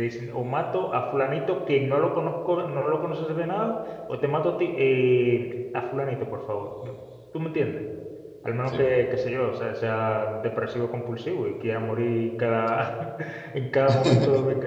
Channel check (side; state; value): both; identical; correlation 1.00